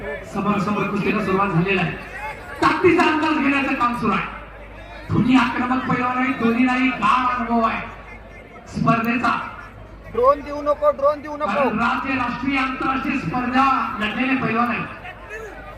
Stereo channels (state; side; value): identical; both; correlation 1.00